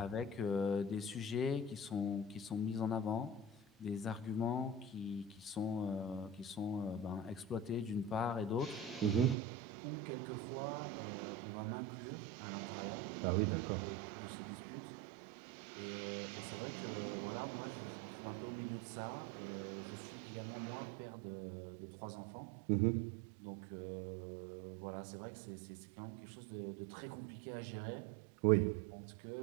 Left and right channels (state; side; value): drops out; left; at 9.3 s